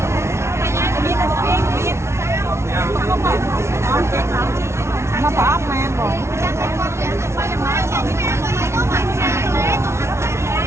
mà bỏ mà bông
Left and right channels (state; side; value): late; left; 0.13 ms